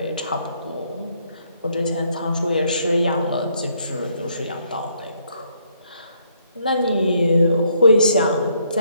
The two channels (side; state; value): both; inverted; correlation -0.70